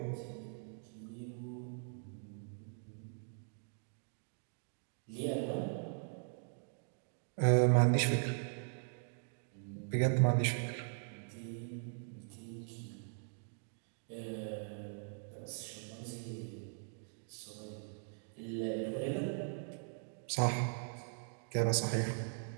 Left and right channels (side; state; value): left; silent; digital silence